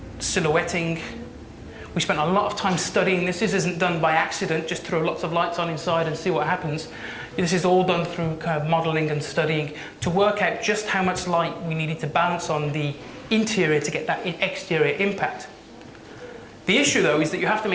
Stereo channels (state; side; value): identical; both; correlation 1.00